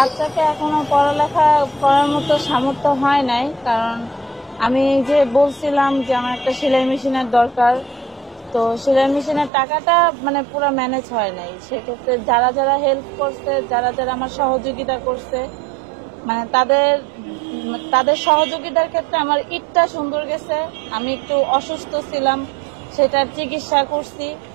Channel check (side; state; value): left; drops out; at 9.5 s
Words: এখনো পড়ালেখা করার মতো সামর্থ্য হয় নাই, কারণ আমি যে বলছিলাম যে আমার একটা সেলাই মেশিনের দরকার, তো সেলাই মেশিনের টাকাটা মানে পুরো ম্যানেজ হয় নাই। সেক্ষেত্রে যারা যারা হেল্প করছে, যারা যারা আমার সহযোগিতা করছে, মানে তাদের সহযোগিতার ক্ষেত্রে আমার ঈদটা সুন্দর গেছে। আমি একটু অসুস্থ ছিলাম, সেটার চিকিৎসা করছি,